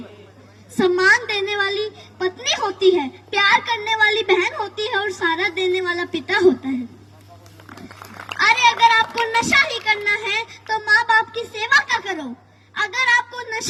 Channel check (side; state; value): both; identical; correlation 1.00